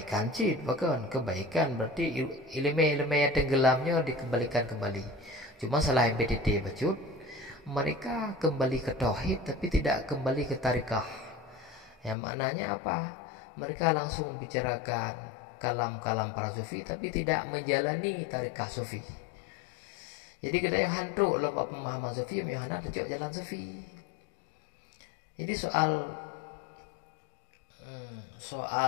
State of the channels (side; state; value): right; drops out; at 12.2 s